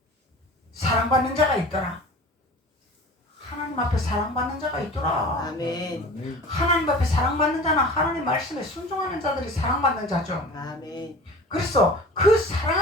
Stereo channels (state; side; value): normal; both; correlation 0.40